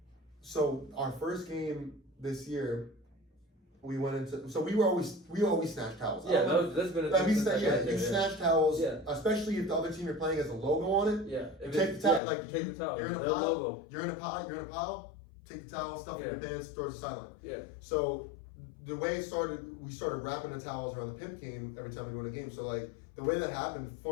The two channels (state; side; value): drops out; right; at 12.2 s